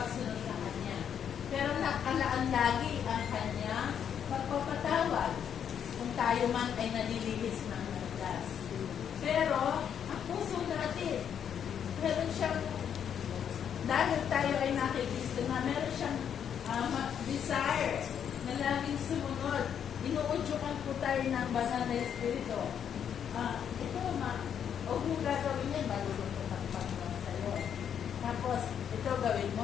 sa Kanya. Pero nakalaan lagi ang Kanya pagpapatawad kung tayo man ay nalilihis ng landas. Pero ang puso natin, meron siyang, dahil tayo ay nakikristo na, meron siyang desire na laging sumunod. Inuudyukan po tayo ng banal na Espiritu. Ito, huwag mong gagawin yan, malulungkot ang Panginoon sa'yo. Tapos, ito gawin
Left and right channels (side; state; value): right; quieter; 8.4 dB